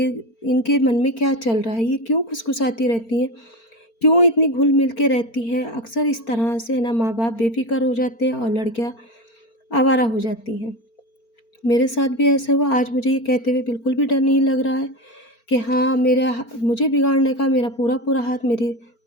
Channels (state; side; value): late; right; 4.4 ms